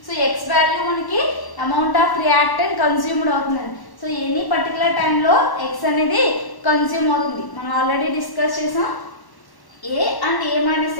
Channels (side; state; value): right; late; 1.1 ms